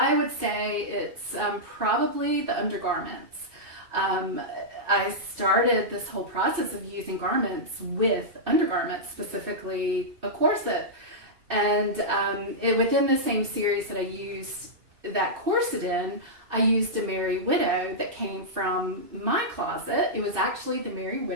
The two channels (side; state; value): left; late; 2.6 ms